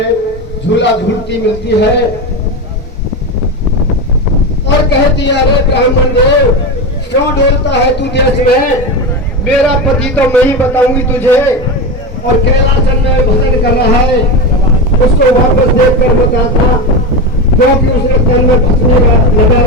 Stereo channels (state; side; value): normal; both; correlation 0.18